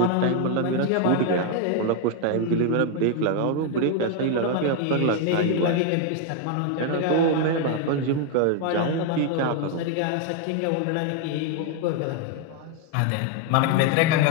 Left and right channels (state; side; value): different; both; correlation 0.01